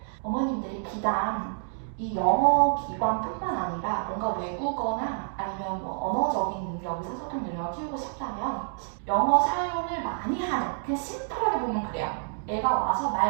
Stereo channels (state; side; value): silent; left; digital silence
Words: 어머님들이 비단 이 영어 기관뿐만 아니라 뭔가 외국어나 아니면 언어적인 능력, 의사소통 능력을 키우고 싶다면 영어 사용을 많이 하는, 그냥 심플하게 보면 그래요. 애가 와서